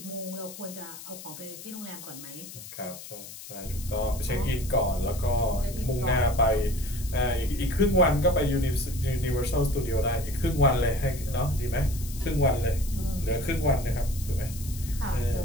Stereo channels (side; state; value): left; noise; hiss, 13 dB below the sound